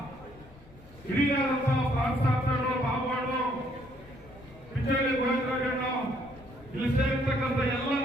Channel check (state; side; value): noise; left; rumble, 22 dB below the sound